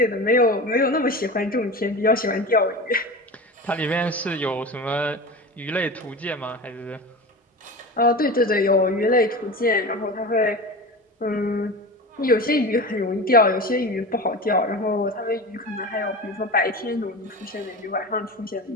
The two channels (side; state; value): both; normal; correlation 0.30